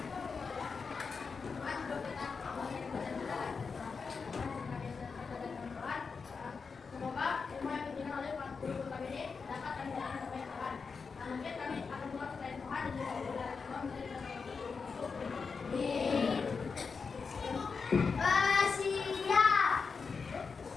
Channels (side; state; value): right; quieter; 5.1 dB